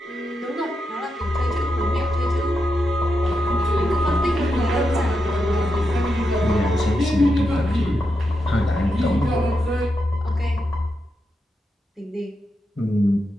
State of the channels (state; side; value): normal; both; correlation 0.86